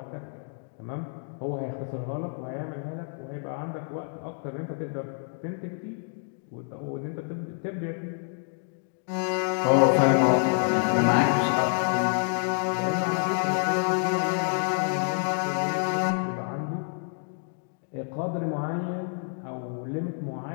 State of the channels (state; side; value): silent; right; 59 dB below the other